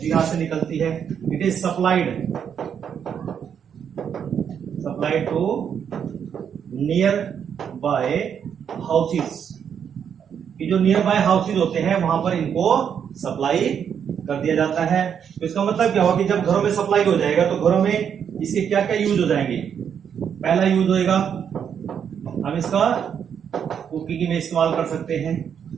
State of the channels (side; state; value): left; quieter; 8.0 dB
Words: यहां से निकलती है, it is supplied to nearby houses. ये जो नियर बाय हाउसेस होते हैं वहां पर इनको सप्लाई कर दिया जाता है। तो इसका मतलब क्या होगा कि जब घरों में सप्लाई हो जाएगा तो घरों में इसके क्या क्या यूज हो जाएंगे। पहला यूज होएगा, हम इसका कुकिंग में इस्तेमाल कर सकते हैं।